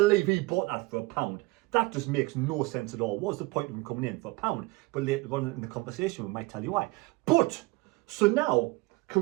he bought that for £1. That just makes no sense at all. What's the point of him coming in for £1? But later on in the conversation, we might tell you why. But so now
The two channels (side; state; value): left; quieter; 22.6 dB